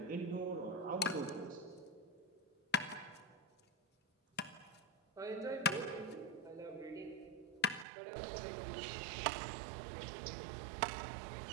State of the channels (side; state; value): left; drops out; at 7.9 s